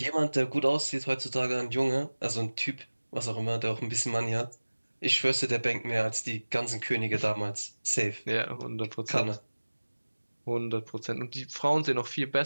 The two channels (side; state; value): both; inverted; correlation -1.00